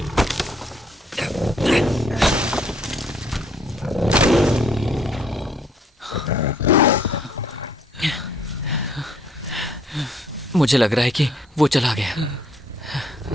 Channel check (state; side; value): normal; both; correlation 0.65